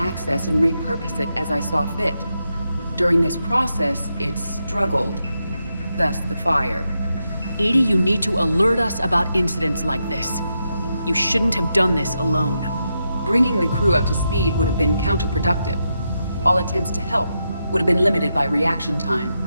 and repurpose it as I saw fit. During this process, it struggled. Thus the fire. Edie, you need to alert us about incidents like this. You shouldn't have done this alone. Bringing the crew up to speed would have been counterproductive. All attempts to help would have been limited by reaction time.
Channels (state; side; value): inverted; both; correlation -0.85